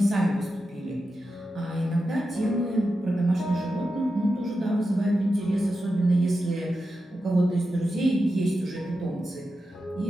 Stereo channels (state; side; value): normal; both; correlation 0.90